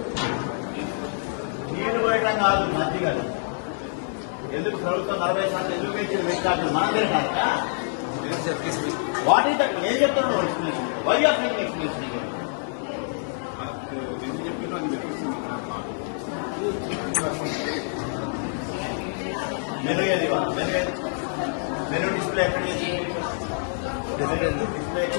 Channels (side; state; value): right; silent; digital silence